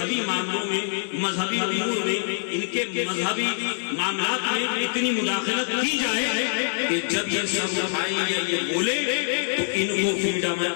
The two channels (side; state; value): right; silent; digital silence